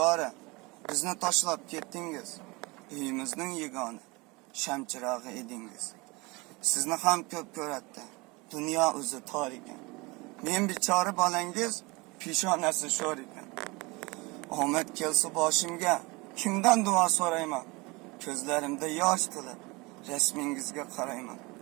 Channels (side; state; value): left; quieter; 25.2 dB